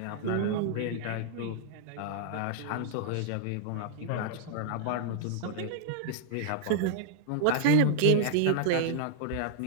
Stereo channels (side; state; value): both; different; correlation -0.01